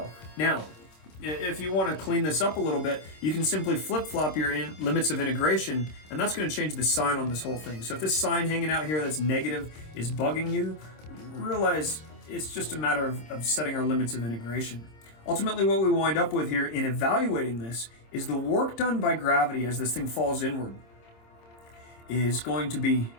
Now, if you want to clean this up a little bit, you can simply flip-flop your limits of integration, and that's going to change the sign on this whole thing. So if this sign hanging out here that's negative is bugging you, realize it's just a matter of setting our limits of integration. Ultimately, what we wind up with here in evaluating this is the work done by gravity as this thing falls inward is going to be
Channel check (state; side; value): late; right; 26 ms